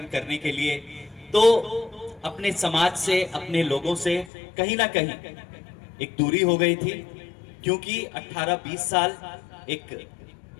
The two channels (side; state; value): right; drops out; at 4.3 s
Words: करने के लिए, तो अपने समाज से, अपने लोगों से कहीं ना कहीं एक दूरी हो गई थी, क्योंकि 18-20 साल एक